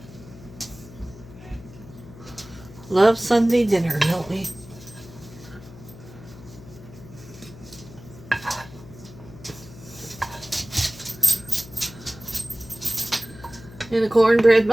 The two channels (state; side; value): noise; left; hum, 18 dB below the sound